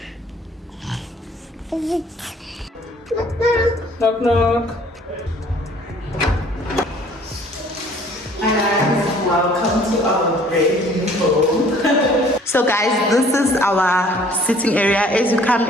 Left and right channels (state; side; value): normal; both; correlation 0.55